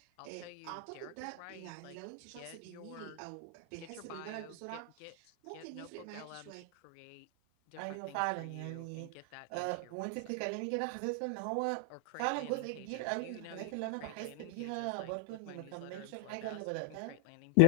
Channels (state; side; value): different; both; correlation 0.00